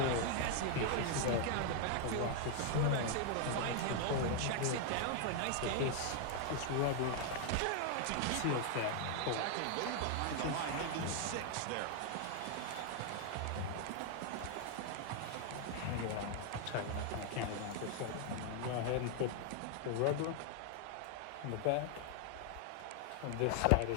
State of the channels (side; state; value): both; different; correlation 0.00